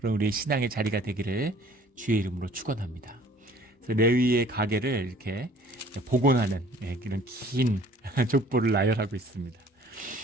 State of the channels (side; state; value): both; normal; correlation 0.54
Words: 우리의 신앙의 자리가 되기를 주의 이름으로 축원합니다. 그래서 레위의 가게를 이렇게 복원하는 이런 긴 족보를 나열하고 있습니다.